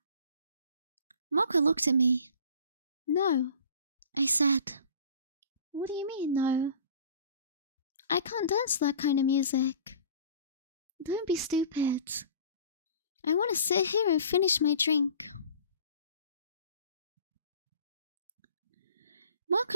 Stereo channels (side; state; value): both; inverted; correlation -0.45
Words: Marco looked at me. No, I said. What do you mean, no? I can't dance to that kind of music. Don't be stupid. I want to sit here and finish my drink.